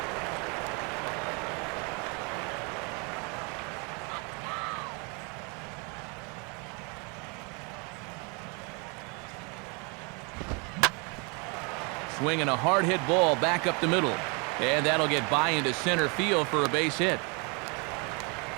Swinging a hard hit ball back up the middle. And that'll get by into center field for a base hit.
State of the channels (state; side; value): quieter; left; 32.7 dB